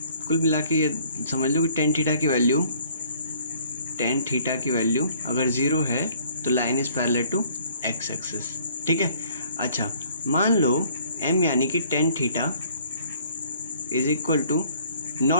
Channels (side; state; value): both; inverted; correlation -0.58